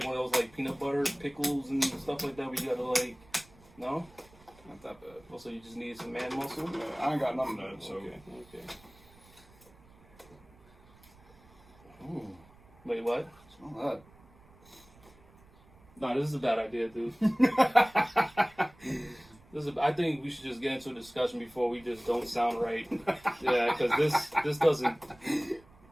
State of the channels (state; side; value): noise; right; rumble, 26 dB below the sound